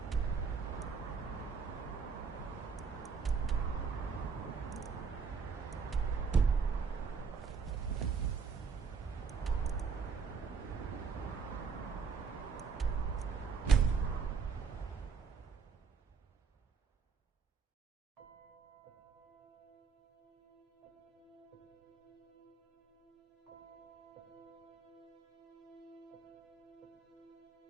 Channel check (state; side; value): quieter; left; 5.6 dB